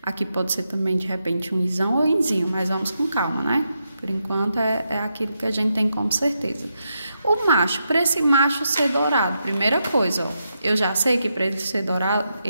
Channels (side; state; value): both; inverted; correlation -0.84